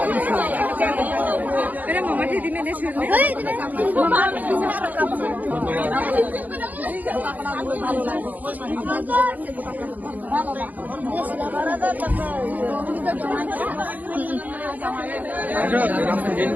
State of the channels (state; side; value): late; left; 0.080 ms